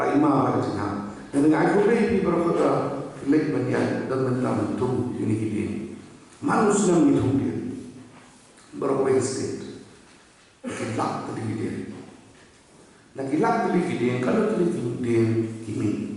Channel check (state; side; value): identical; both; correlation 1.00